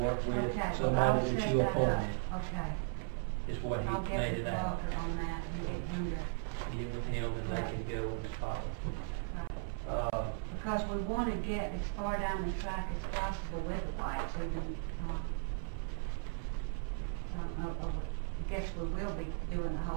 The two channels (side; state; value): left; silent; 53 dB below the other